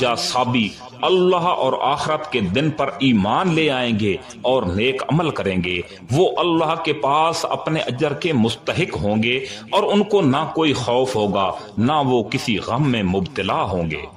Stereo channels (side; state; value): both; identical; correlation 1.00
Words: صابی اللہ اور آخرت کے دن پر ایمان لے آئیں گے اور نیک عمل کریں گے، وہ اللہ کے پاس اپنے اجر کے مستحق ہوں گے اور ان کو نہ کوئی خوف ہوگا نہ وہ کسی غم میں مبتلا ہوں